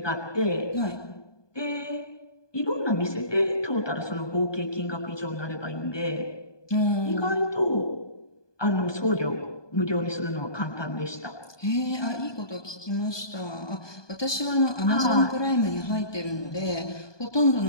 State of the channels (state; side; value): late; right; 1.2 ms